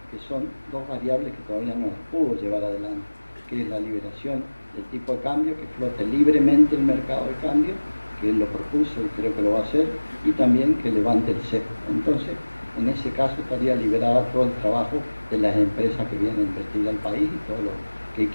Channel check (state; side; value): inverted; both; correlation -1.00